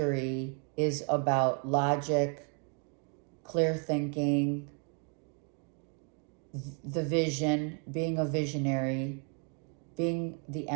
is about logic, clear thinking, the vision, being a visionary, being the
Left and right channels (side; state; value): left; quieter; 39.8 dB